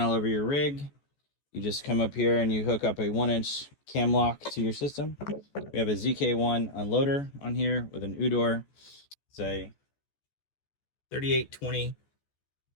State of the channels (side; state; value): right; late; 14 ms